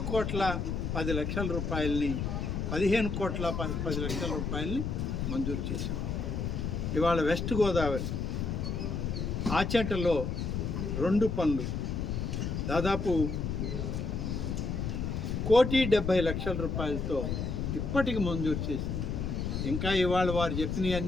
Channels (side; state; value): left; noise; rumble, 2 dB below the sound